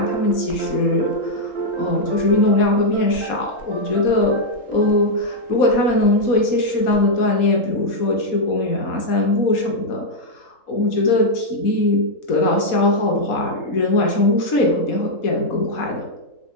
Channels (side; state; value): right; late; 3.8 ms